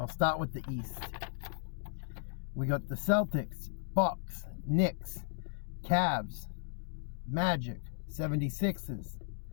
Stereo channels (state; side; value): silent; right; digital silence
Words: start with the East. We got the Celtics, Bucks, Knicks, Cavs, Magic, 76ers,